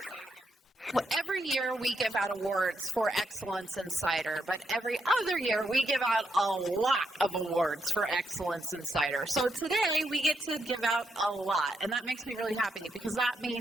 Well, every year we give out awards for excellence in cider, but every other year we give out a lot of awards for excellence in cider. So today we get to give out a lot, and that makes me really happy because that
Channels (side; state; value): both; normal; correlation 0.80